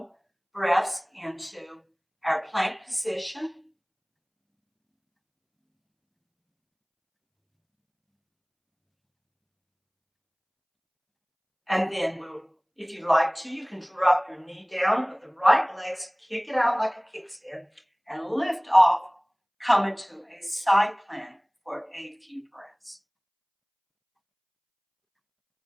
breaths into our plank position. And then if you like to, you can drop your knee down with the right legs, kick it out like a kickstand, and lift off, come into a side plank for a few breaths.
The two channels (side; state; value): both; identical; correlation 1.00